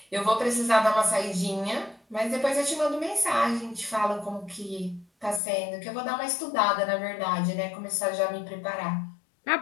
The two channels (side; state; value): right; drops out; at 5.4 s